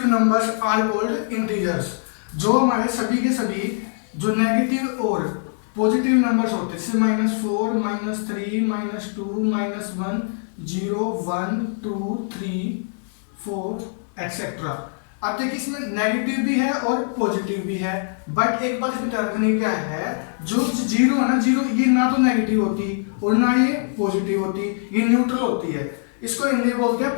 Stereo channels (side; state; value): right; silent; digital silence